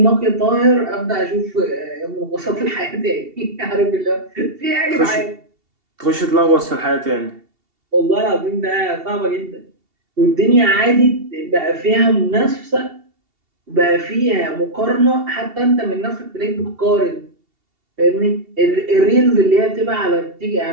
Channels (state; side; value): late; left; 2.7 ms